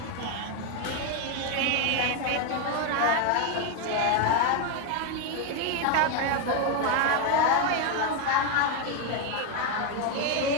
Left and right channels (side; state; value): both; different; correlation 0.02